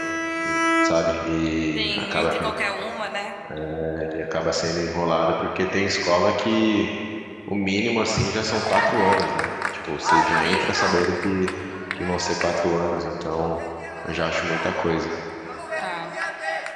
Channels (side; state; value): both; identical; correlation 1.00